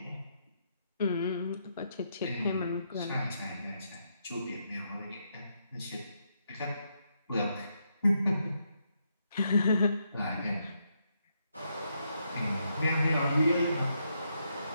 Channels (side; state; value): both; inverted; correlation -0.79